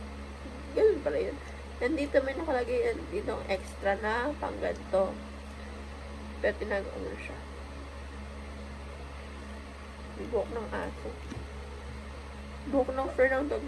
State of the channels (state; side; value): identical; both; correlation 1.00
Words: ganun pala yun. And dito may nakalagay yan, dito extra na pang ganito. Pero tinagawa mo siya. Buhok ng aso. Buhok ng fur ng dog